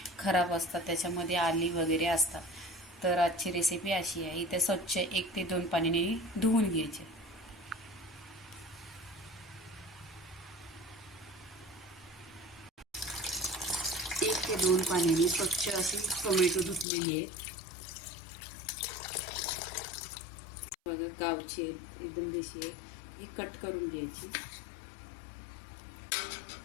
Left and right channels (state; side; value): drops out; right; at 16.9 s